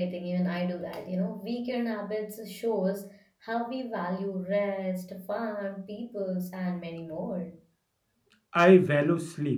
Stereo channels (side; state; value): both; identical; correlation 1.00